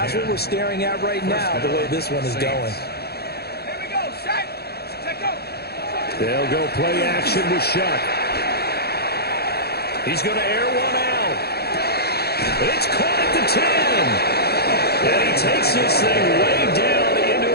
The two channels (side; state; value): right; late; 0.46 ms